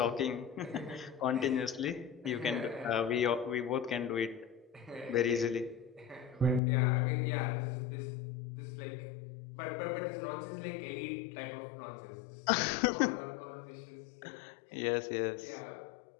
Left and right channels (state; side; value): drops out; right; at 6.6 s